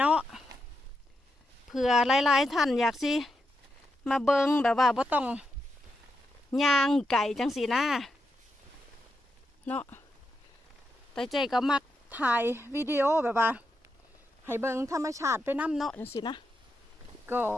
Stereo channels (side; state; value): both; normal; correlation 0.85